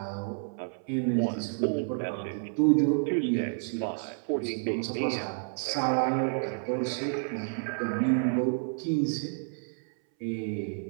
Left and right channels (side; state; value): left; silent; 58 dB below the other